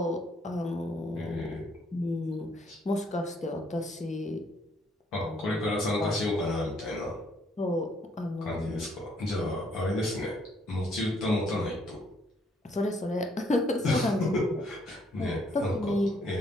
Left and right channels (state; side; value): normal; both; correlation 0.68